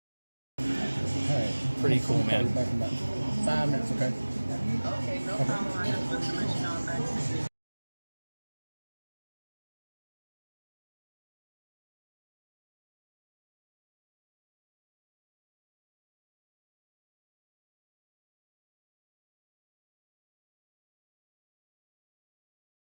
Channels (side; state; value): both; inverted; correlation -1.00